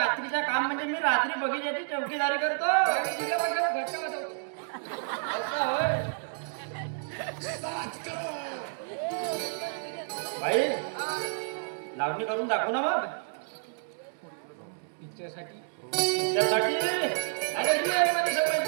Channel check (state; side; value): silent; left; digital silence